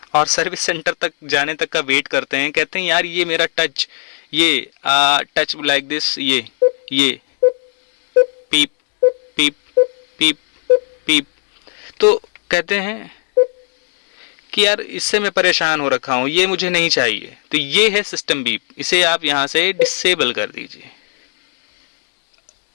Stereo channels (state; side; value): silent; right; 62 dB below the other